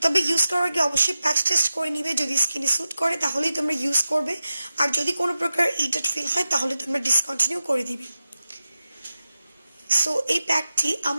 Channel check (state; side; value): inverted; both; correlation -0.92